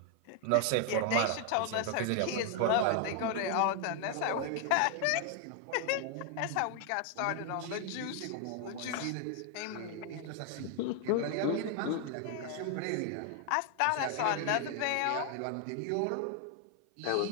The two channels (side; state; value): both; different; correlation 0.00